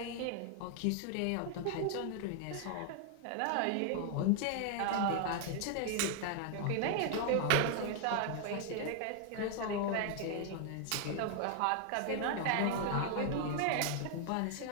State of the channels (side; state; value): both; different; correlation 0.00